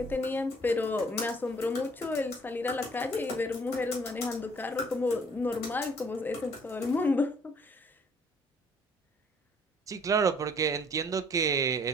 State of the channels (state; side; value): normal; both; correlation 0.59